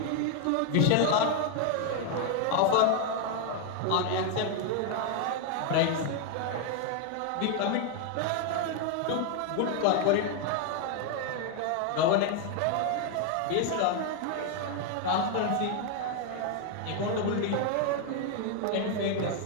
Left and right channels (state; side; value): different; both; correlation 0.01